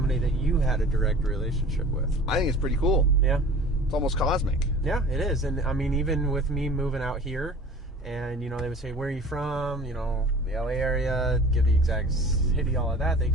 that you had a direct relationship with. I think it's pretty cool. Yeah. It's almost cosmic. Yeah, it is. And I mean, even with me moving out here, and, they would say, where are you from? The LA area, give the exact city, all of that. They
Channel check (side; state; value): both; normal; correlation 0.43